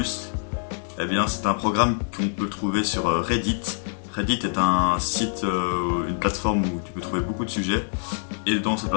Eh bien, c'est un programme qu'on peut trouver sur Reddit. Reddit est un site, une plateforme où tu peux trouver beaucoup de sujets. Et dans cette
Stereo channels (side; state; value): right; silent; digital silence